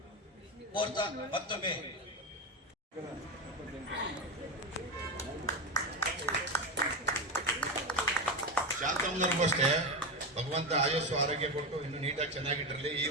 ಕೋರ್ತಾ ಮತ್ತೊಮ್ಮೆ ಶಾಂತಮ್ಮನವ್ರಿಗೂ ಅಷ್ಟೇ ಭಗವಂತ ಆಯಸ್ಸು ಆರೋಗ್ಯ ಕೊಟ್ಟು ಇನ್ನು ನೀಟಾಗಿ ಚೆನ್ನಾಗಿಟ್ಟಿರಲಿ. ಈ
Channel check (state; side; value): normal; both; correlation 0.15